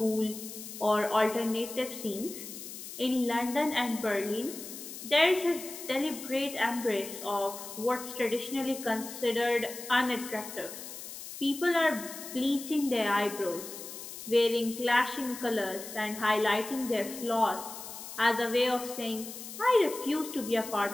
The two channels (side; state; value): left; noise; hiss, 11 dB below the sound